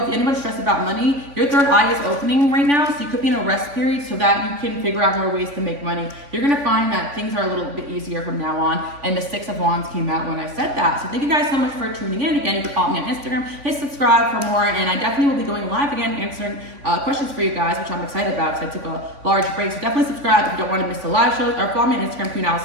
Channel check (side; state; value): left; late; 3.5 ms